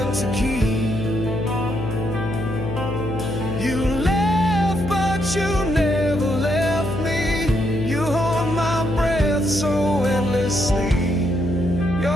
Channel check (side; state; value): left; noise; hum, 5 dB below the sound